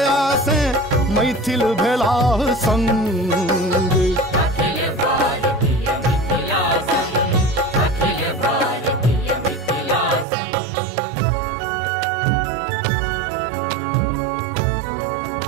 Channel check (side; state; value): left; drops out; at 10.2 s